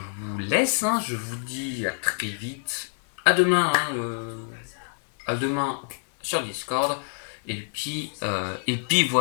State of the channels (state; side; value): silent; right; digital silence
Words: vous laisse. Je vous dis à très vite. À demain. À demain sur Discord. Et puis